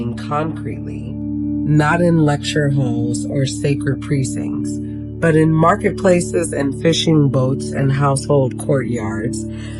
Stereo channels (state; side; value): identical; both; correlation 1.00